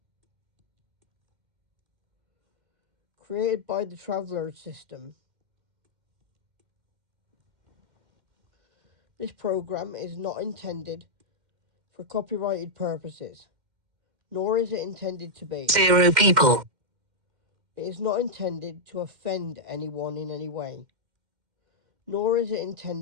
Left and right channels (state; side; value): late; left; 2.1 ms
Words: Created by the Traveller System. This program is not intended for copyrighted purposes, nor is it intended to be. 0 people. It is not intended to offend anyone in any way, nor is it